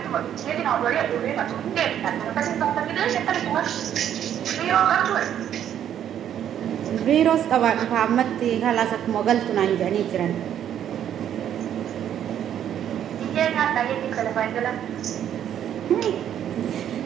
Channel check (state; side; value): quieter; left; 10.1 dB